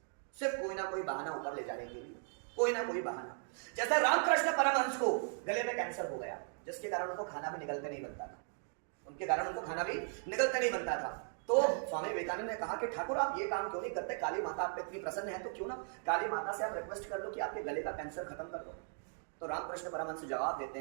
सिर्फ कोई ना कोई बहाना ऊपर ले जाने के लिए, कोई ना कोई बहाना। जैसे रामकृष्ण परमहंस को गले में कैंसर हो गया, जिसके कारण उनको खाना भी निगलते नहीं बनता था, उनके कारण उनको खाना भी निगलते नहीं बनता था। तो स्वामी विवेकानंद ने कहा कि ठाकुर आप ये काम क्यों नहीं करते, काली माता आप पे इतनी प्रसन्न है तो क्यों ना काली माता से आप रिक्वेस्ट कर लो कि आपके गले का कैंसर खत्म कर दो। तो रामकृष्ण परमहंस जवाब देते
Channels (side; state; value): left; silent; 53 dB below the other